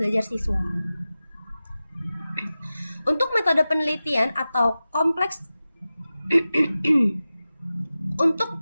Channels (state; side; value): inverted; both; correlation -0.95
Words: siswa. Untuk metode penelitian atau kompleks Untuk